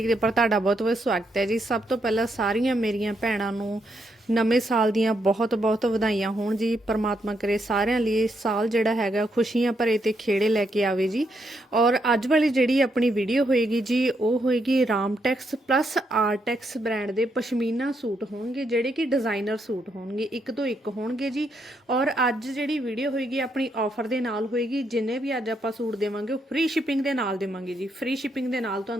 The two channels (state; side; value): normal; both; correlation 0.78